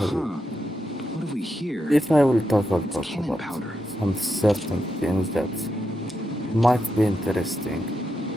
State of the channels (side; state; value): both; normal; correlation 0.85